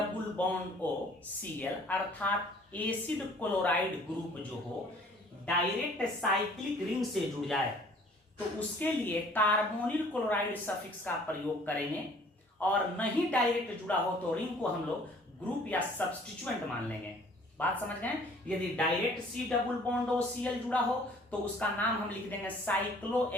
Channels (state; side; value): normal; both; correlation 0.54